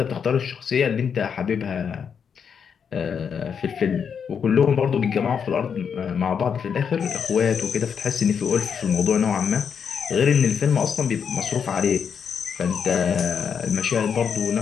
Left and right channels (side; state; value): right; quieter; 7.0 dB